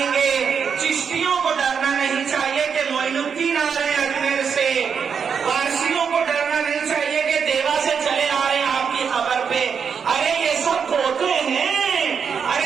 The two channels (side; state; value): left; quieter; 6.6 dB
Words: گے. چشتیوں کو ڈرنا نہیں چاہیے کہ معین الدین آ رہے ہیں اجمیر سے، وارسیوں کو ڈرنا نہیں چاہیے کہ دیوا سے چلے آ رہے ہیں آپ کی خبر پہ. ارے یہ سب پوتے ہیں،